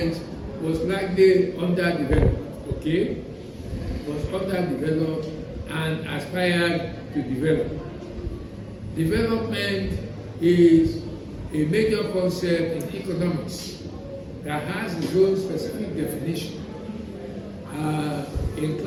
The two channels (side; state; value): both; identical; correlation 1.00